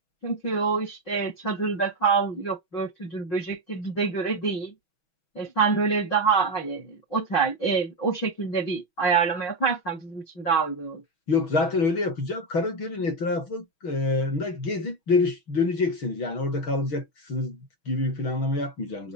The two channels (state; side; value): late; right; 6.2 ms